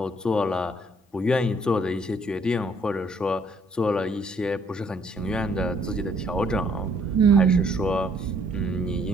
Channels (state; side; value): normal; both; correlation 0.64